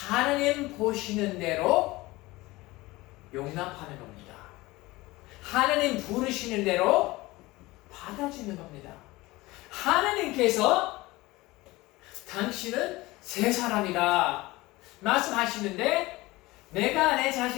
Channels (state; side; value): quieter; right; 20.5 dB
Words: 보시는 대로 용납하는 겁니다. 하나님 부르시는 대로 받아주는 겁니다. 하나님께서 당신은 새 사람이다 말씀하시는데 내가 내